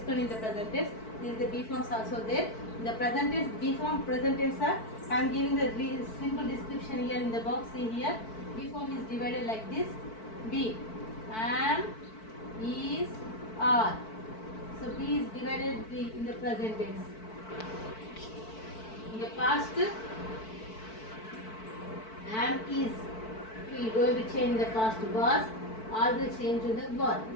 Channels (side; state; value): right; late; 4.5 ms